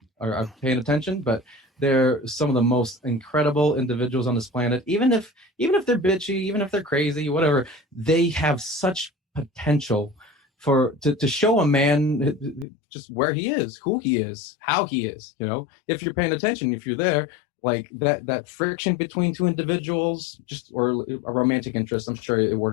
are paying attention, but they're some of the most incredible individuals on this planet. Even if they're bitchy, even if they're crazy, whatever, they have such potential to show a man just where he is, who he is, how he is. If you're paying attention, if you're there, like that friction between two individuals, just or a romantic interest. I'm sure it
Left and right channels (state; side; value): drops out; right; at 12.7 s